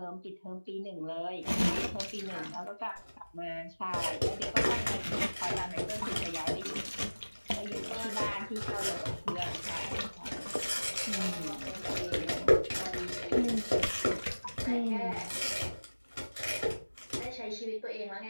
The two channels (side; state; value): both; inverted; correlation -1.00